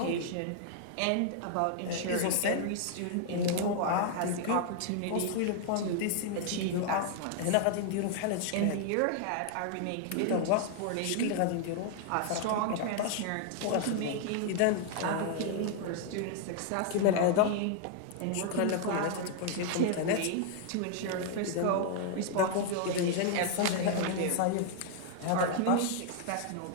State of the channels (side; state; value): both; different; correlation 0.00